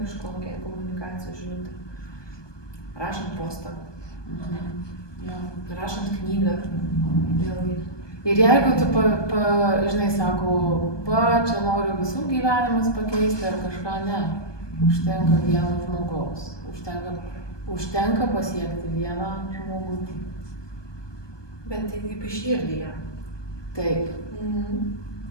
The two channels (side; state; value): right; late; 1.2 ms